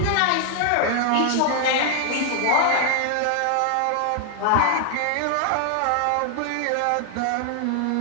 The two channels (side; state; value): both; different; correlation 0.00